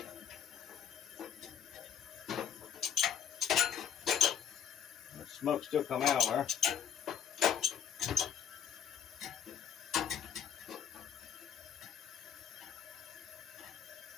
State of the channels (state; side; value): quieter; right; 8.6 dB